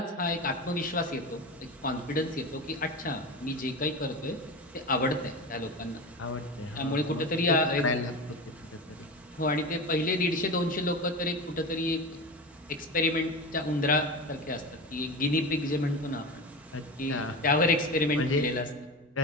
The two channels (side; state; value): both; normal; correlation 0.26